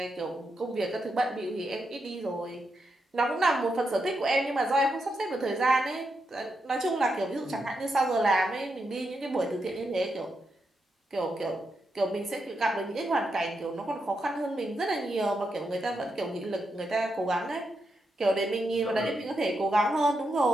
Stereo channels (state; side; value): normal; both; correlation 0.84